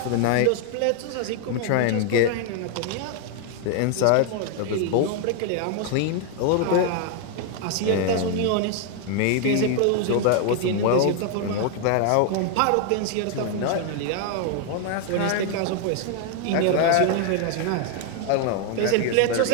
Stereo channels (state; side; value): different; both; correlation 0.00